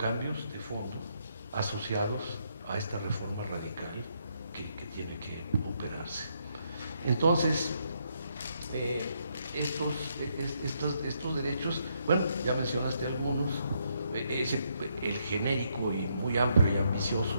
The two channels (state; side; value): inverted; both; correlation -0.75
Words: de fondo asociados a esta reforma radical que tiene que operarse. Entonces, estos derechos, bueno, ya mencionaste algunos, el genérico y muy amplio y